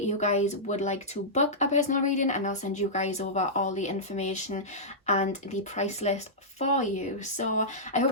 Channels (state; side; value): normal; both; correlation -0.13